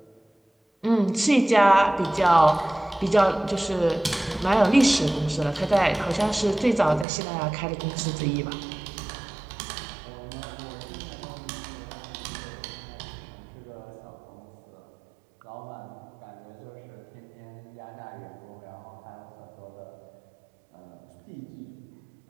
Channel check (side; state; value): left; drops out; at 7.1 s